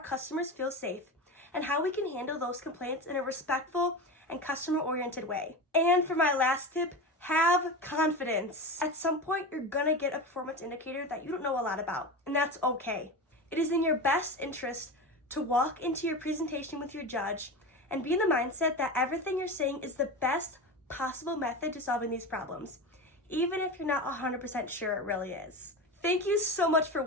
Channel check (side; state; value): both; normal; correlation 0.25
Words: feel safe and how we can handle those complaints in a respectful and customer-oriented way. And for my last tip, have confidence. At some point, you're gonna get a performance indicator that you don't know a lot about, and that's okay. It is in your best interest to walk into your presentation with your judge and be in the mindset that everything you're saying is the best possible method to solving these problems, even if you're not 100% sure it really is. Thank you so much for